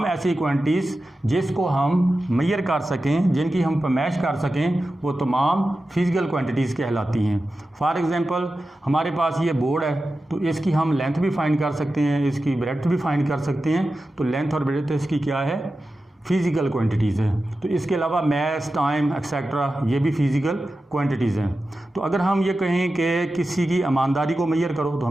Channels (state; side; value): normal; both; correlation 0.93